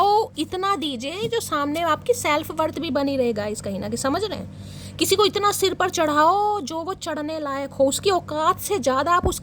इतना दीजिए जो सामने आपकी सेल्फ वर्थ भी बनी रहेगा, इस कहीं ना कहीं, समझ रहे हैं। किसी को इतना सिर पर चढ़ाओ जो वो चढ़ने लायक हो, उसकी औकात से ज़्यादा आप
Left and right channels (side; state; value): both; identical; correlation 1.00